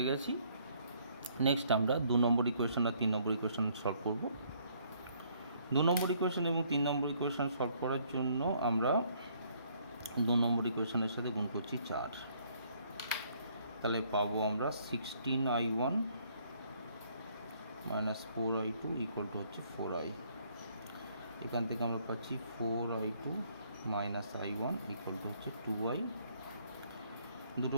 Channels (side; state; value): both; inverted; correlation -0.65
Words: গেছি। নেক্সট আমরা 2 নম্বর ইকুয়েশন আর 3 নম্বর ইকুয়েশন সলভ করব। 2 নম্বর ইকুয়েশন এবং 3 নম্বর ইকুয়েশন সলভ করার জন্য আমরা 2 নম্বর ইকুয়েশনের সাথে গুণ করছি 4। তাহলে পাবো আমরা 16i1 minus 4i2 equal to হচ্ছে 4i। এখান থেকে আমরা পাচ্ছি 4i2 minus i1 equal to হচ্ছে 2i। দুটো